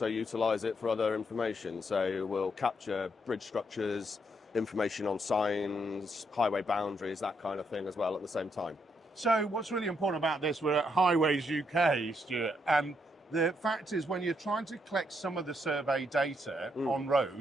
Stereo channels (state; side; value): normal; both; correlation 0.76